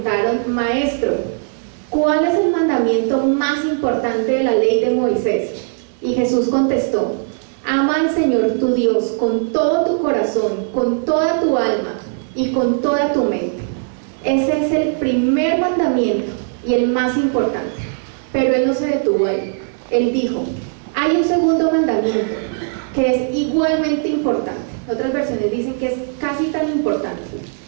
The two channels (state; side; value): silent; left; 67 dB below the other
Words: Maestro, ¿cuál es el mandamiento más importante de la ley de Moisés? Y Jesús contestó: ama al Señor tu Dios con todo tu corazón, con toda tu alma y con toda tu mente. Ese es el primer mandamiento y el más importante. Pero él no se detuvo ahí. Él dijo: hay un segundo mandamiento que es igualmente importante. Otras versiones dicen que es casi tan importante.